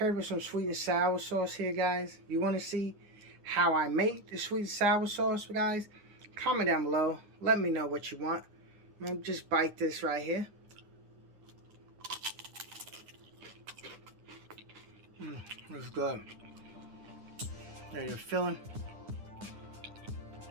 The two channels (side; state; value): left; late; 9.8 ms